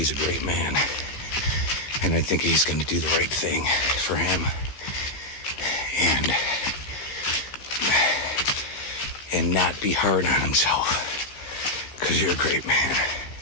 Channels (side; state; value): right; late; 15 ms